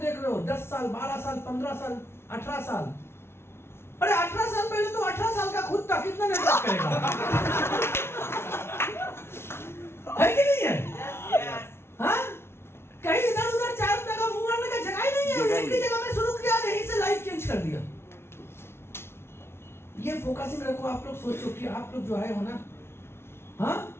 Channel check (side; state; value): right; late; 0.12 ms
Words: रहे हो, 10 साल 12 साल 15 साल 18 साल, अरे 18 साल पहले तो 18 साल का खुद था, कितना नेटवर्क करेगा? है कि नहीं है? हाँ, कहीं इधर उधर 4 रुपए का मुंह मारने का जगह ही नहीं है। एक ही जगह में शुरू किया, यहीं से लाइव चेंज कर दिया। ये फोकसिंग रखो। आप लोग सोचो कि आप लोग जो है हो ना, हाँ